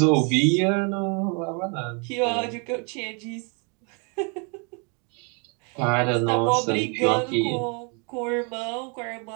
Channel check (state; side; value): quieter; left; 35.8 dB